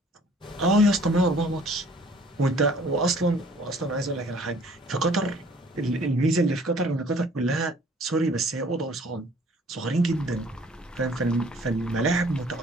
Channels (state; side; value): normal; both; correlation 0.55